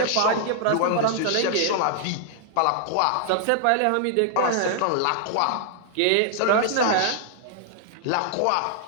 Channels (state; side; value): different; both; correlation -0.01